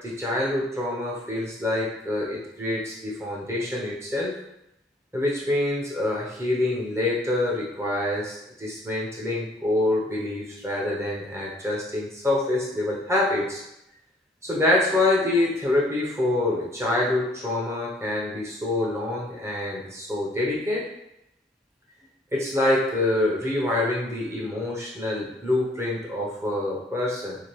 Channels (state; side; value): normal; both; correlation 0.59